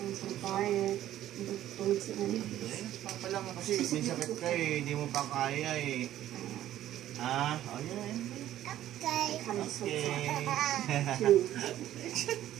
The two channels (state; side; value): quieter; left; 12.8 dB